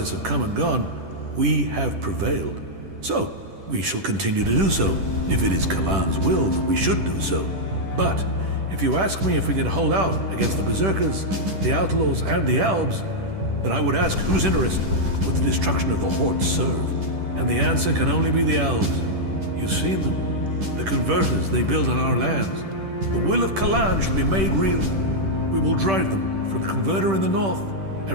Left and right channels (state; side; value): late; left; 10 ms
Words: have come and gone, we have prevailed. So, we shall continue to do so, if it is Kalan's will that we should do so. But, if you ask me if we can hold out against the Berserkers, the Outlaws, and the Albs, then I would ask whose interest would the destruction of the Horde serve? And the answer can only be the Albs. You've seen them. The converters they build on our lands. The will of Kalan shall be made real. We will drive them from the converter in the north,